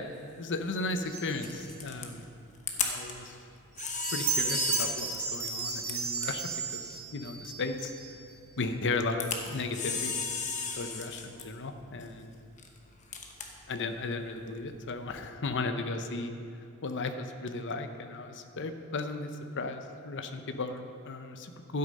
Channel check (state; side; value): normal; both; correlation 0.15